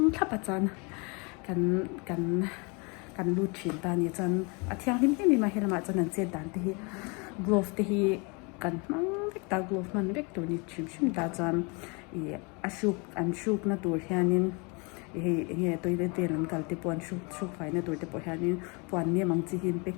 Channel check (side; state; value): right; quieter; 30.9 dB